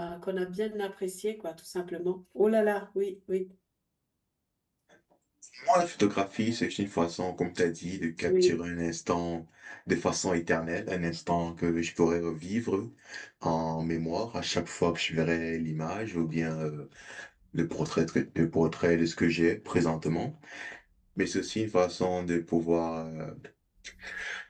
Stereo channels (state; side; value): identical; both; correlation 1.00